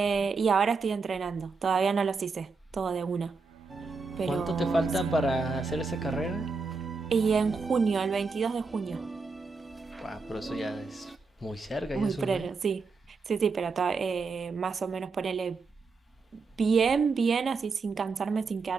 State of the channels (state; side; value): quieter; left; 4.5 dB